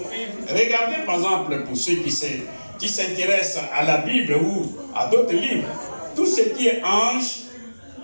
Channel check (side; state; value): both; inverted; correlation -1.00